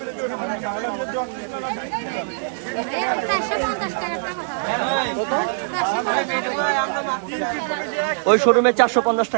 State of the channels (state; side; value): silent; left; digital silence